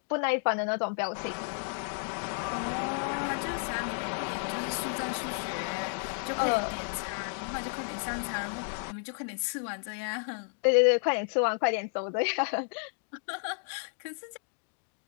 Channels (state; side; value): silent; right; 56 dB below the other